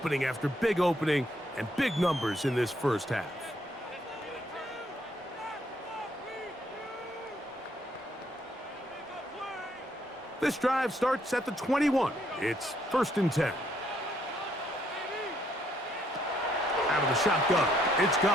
after big opening and big numbers in this first half. This drive starts at the 21. It's first and 10. Out of the shotgun, it's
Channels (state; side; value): normal; both; correlation 0.70